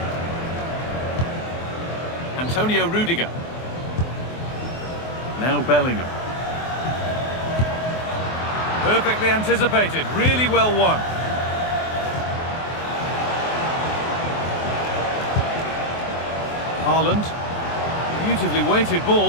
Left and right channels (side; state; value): right; late; 24 ms